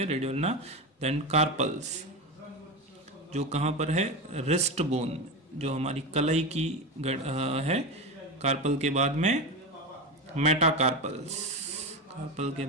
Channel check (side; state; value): both; normal; correlation 0.20